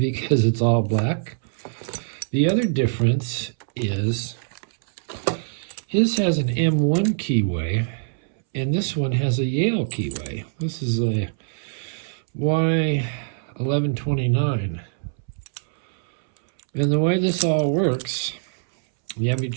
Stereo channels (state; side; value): silent; left; 63 dB below the other